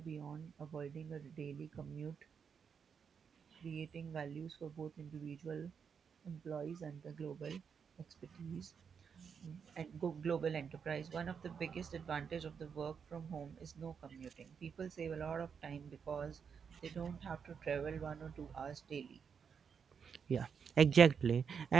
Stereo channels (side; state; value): left; quieter; 6.6 dB